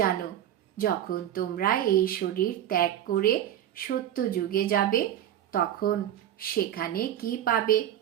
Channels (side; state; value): left; quieter; 11.2 dB